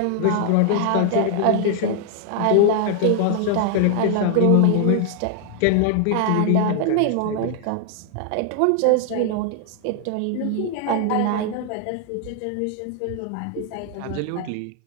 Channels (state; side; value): different; both; correlation 0.00